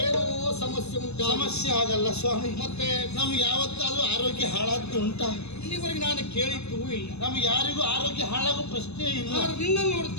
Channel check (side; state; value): right; late; 0.80 ms